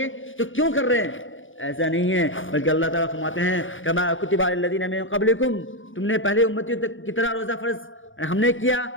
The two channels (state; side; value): late; right; 0.57 ms